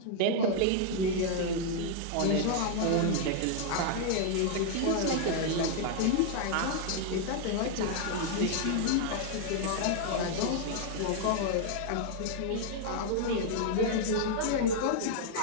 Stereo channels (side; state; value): both; different; correlation 0.00